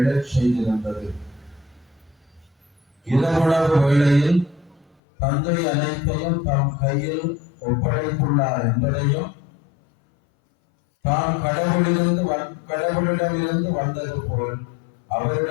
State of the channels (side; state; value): right; drops out; at 5.0 s